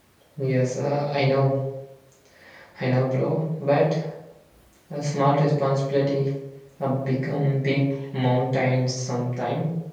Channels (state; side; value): identical; both; correlation 1.00